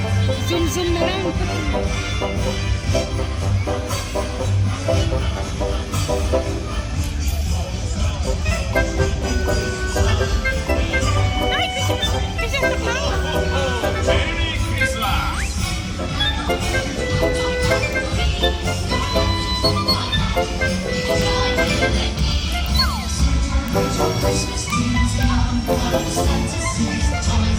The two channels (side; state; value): both; identical; correlation 1.00